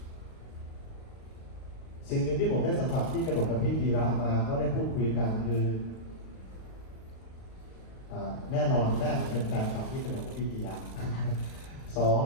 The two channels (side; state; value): right; late; 37 ms